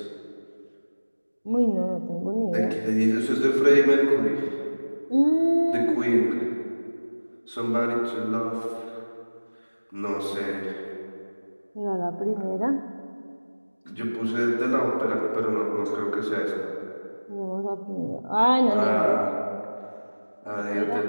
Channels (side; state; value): both; inverted; correlation -1.00